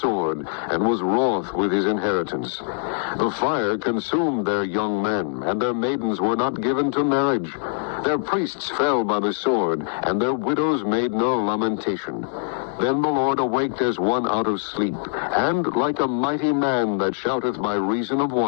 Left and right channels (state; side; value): silent; right; digital silence